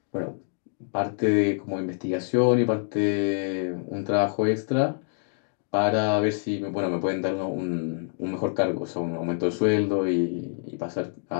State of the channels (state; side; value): silent; right; digital silence